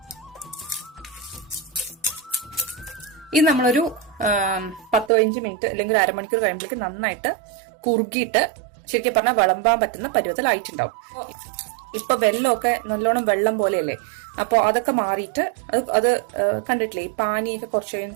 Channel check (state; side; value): drops out; left; at 5.1 s